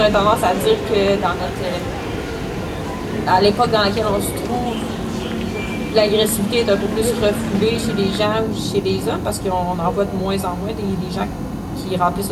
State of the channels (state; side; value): identical; both; correlation 1.00